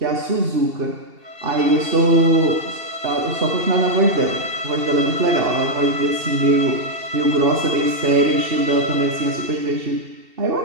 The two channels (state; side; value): late; left; 2.7 ms